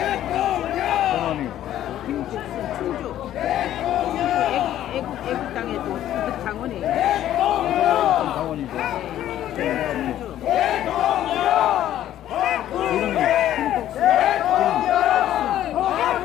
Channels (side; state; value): right; quieter; 12.2 dB